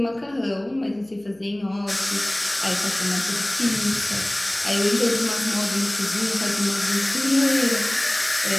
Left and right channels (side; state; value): left; noise; hum, 29 dB below the sound